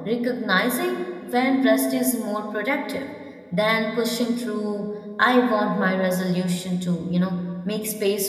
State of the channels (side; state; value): both; identical; correlation 1.00